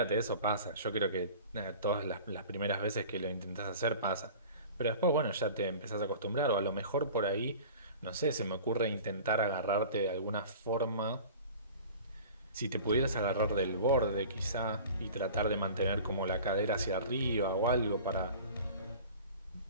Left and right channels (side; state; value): both; inverted; correlation -0.41